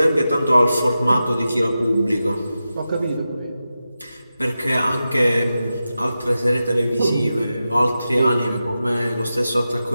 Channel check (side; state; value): both; inverted; correlation -0.92